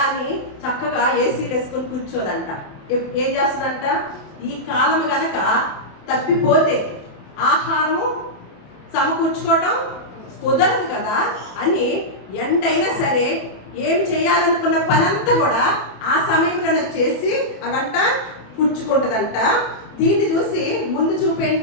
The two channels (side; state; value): right; late; 28 ms